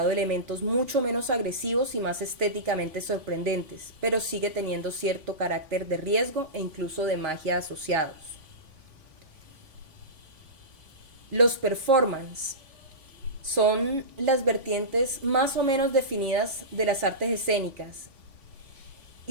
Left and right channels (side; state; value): left; late; 3.6 ms